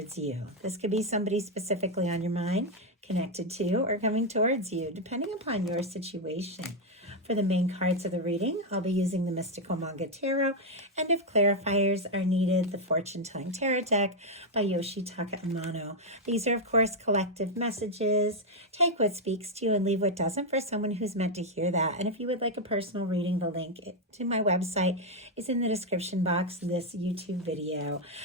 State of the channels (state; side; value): normal; both; correlation 0.02